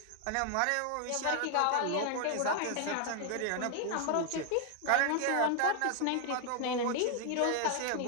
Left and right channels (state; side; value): different; both; correlation 0.00